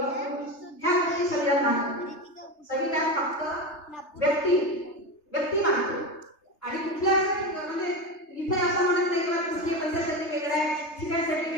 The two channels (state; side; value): late; right; 3.3 ms